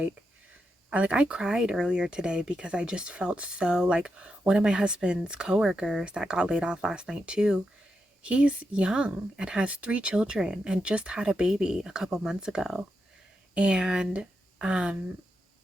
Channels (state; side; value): normal; both; correlation 0.86